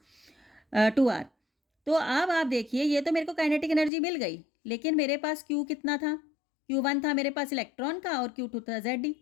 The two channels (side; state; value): right; drops out; at 3.9 s